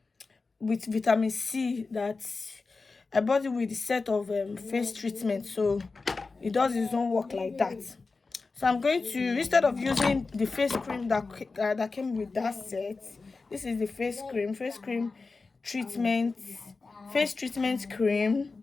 with vitamin C that I bought it with the set of face treatment, so it does its own work like that. So I'm going to, instead of using the face cream that came with that set, this is the face treatment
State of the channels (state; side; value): quieter; right; 4.1 dB